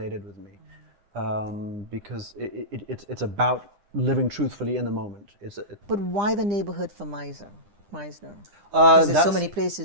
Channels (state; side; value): late; left; 9.9 ms